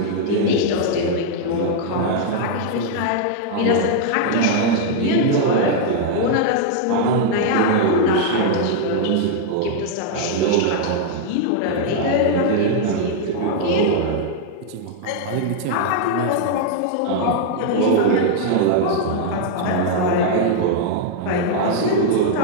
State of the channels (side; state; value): both; different; correlation -0.01